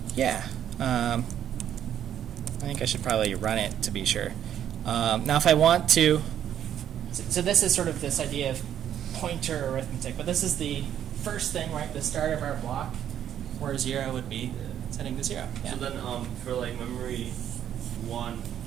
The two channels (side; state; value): left; quieter; 10.2 dB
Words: Yeah. I think I should probably run it to be sure. Now, if I want to, so this is sort of this idea of pointer arithmetic, but this is the first thing, right? The start of our block, where 0 would be setting to 0. Yeah. So then, for like memory 1,